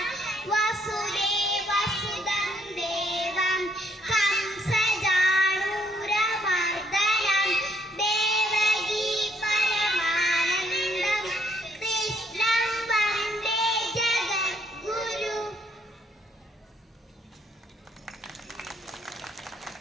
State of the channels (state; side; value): normal; both; correlation 0.69